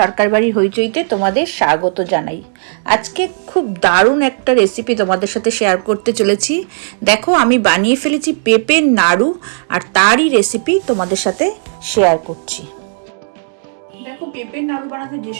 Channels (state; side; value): silent; left; digital silence